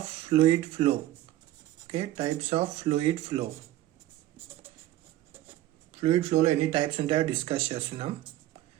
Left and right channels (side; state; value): left; quieter; 14.5 dB